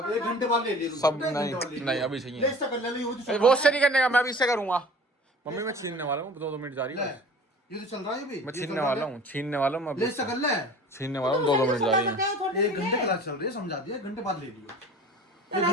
1 घंटे बाद ले लियो। सब नहीं अभी चाहिए। ले इससे कर ले लो, ये वो उससे नहीं करने का, मैं अभी इससे करूंगा। मम्मी मैं छीनने वाला हूँ, 2 मिनट जा रही है, ये तो चल रहा है ये भी। मैं छीनने वाला हूँ, छीनने वाला हूँ मैं ले अभी, इससे कर ले। छीनने वाला हूँ, 2 मिनट जा रही है। 1 घंटे क्लास चल रही है, समझा दिया, 1 घंटे बाद ले लियो। एक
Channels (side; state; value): both; normal; correlation 0.43